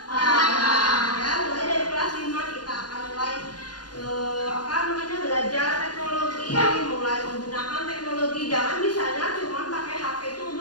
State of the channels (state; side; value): late; right; 0.69 ms